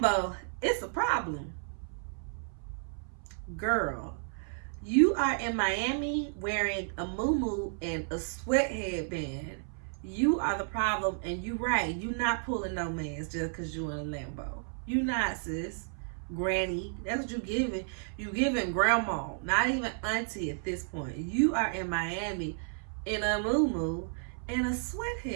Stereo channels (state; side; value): silent; left; 56 dB below the other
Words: it's a problem. Girl, you are in Miami wearing a muumuu and a sweat headband. You are the problem, and you right. You not pulling no mans just because you in a Lambo. You not, sis. Granny. That's what you giving. You giving grandma. Not even auntie at this point. You are in Miami in a muumuu and a sweat